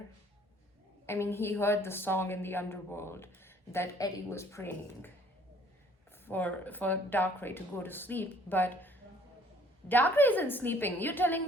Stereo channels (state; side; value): normal; both; correlation 0.58